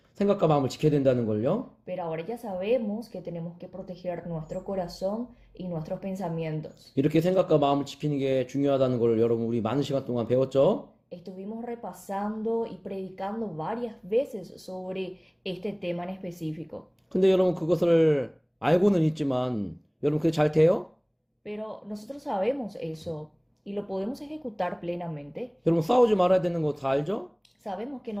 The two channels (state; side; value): identical; both; correlation 1.00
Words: 생각과 마음을 지켜야 된다는 걸요. Pero ahora ya sabemos que tenemos que proteger nuestro corazón y nuestros pensamientos. 이렇게 생각과 마음을 지키는 게 중요하다는 걸 여러분 우리 많은 시간 동안 배웠죠. Estuvimos repasando y predicando varias veces sobre este tema en específico. 근데 여러분 그것을 알고는 있지만 여러분 그게 잘 돼요? Pero nosotros sabemos eso y lo podemos ejecutar plenamente. 여러분 싸우지 말아야 되는 거 다 알죠? Sabemos que